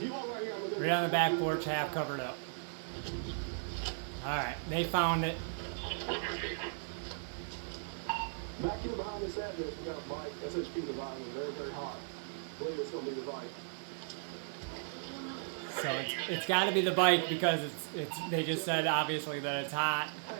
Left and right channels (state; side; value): silent; left; digital silence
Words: Right on the back porch, half covered up. Alright, they found it. Back here behind this address, we got a bike. SHP Divine was very, very hot. I believe it's going to be the bike. So it's got to be the bike because it's. They just said obviously that it's hot,